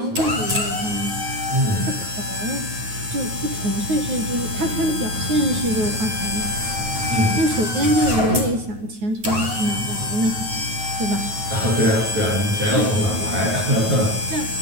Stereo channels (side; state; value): left; late; 9.3 ms